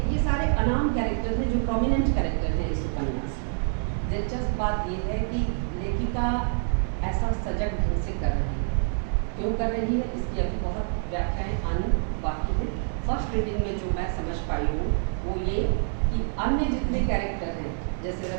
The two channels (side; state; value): left; silent; 60 dB below the other